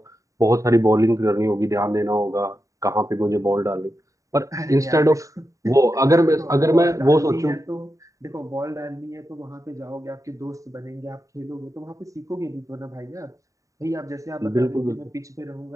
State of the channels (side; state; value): left; late; 0.16 ms